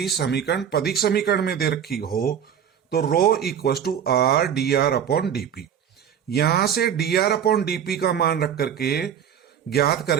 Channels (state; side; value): quieter; left; 8.6 dB